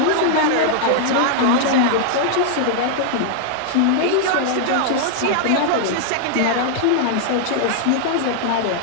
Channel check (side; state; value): both; different; correlation -0.01